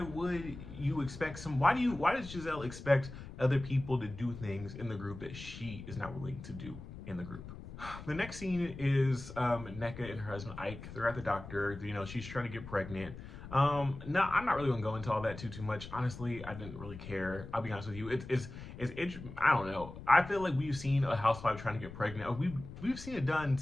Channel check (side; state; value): left; noise; rumble, 12 dB below the sound